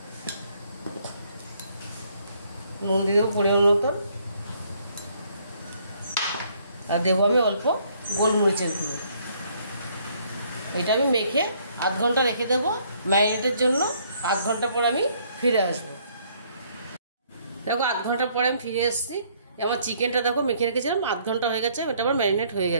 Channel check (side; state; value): both; inverted; correlation -0.65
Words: দিয়ে দেবো পরিমাণ মতো। আর দেবো আমি অল্প গোলমরিচের গুঁড়ো। এটা আমি মেখে আধ ঘন্টা রেখে দেবো ম্যারিনেটের জন্য। আধ ঘন্টা পর আমি ফিরে আসবো। দেখো আধ ঘন্টা পরে আমি ফিরে এসেছি। আমার চিকেনটা দেখো মেখে রেখেছিলাম, আধ ঘন্টা হয়ে গেছে, এটা আমার ম্যারিনেট হয়ে